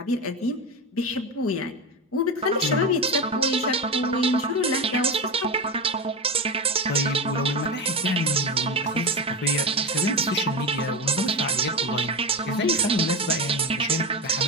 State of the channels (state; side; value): normal; both; correlation 0.18